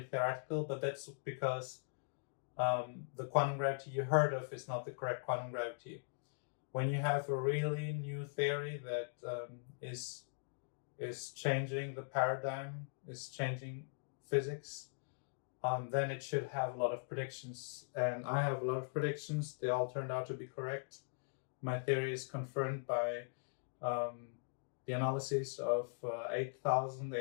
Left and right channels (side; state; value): right; silent; digital silence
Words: theoretical, but that's because the quantum gravity you heard of is not the correct quantum gravity. When you have a really new theory that is changing the paradigm, is changing physics, then it should have a lot of predictions. And I have a lot of predictions. They all turned out to be correct. My theory is confirmed by the analysis of